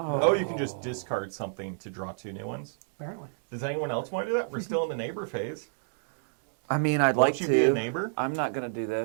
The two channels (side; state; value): left; silent; digital silence